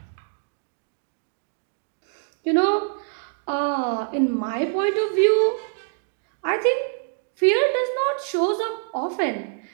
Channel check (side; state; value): left; silent; digital silence